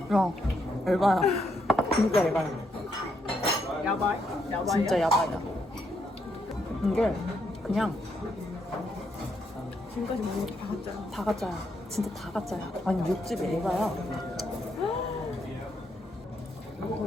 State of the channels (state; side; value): normal; both; correlation 0.77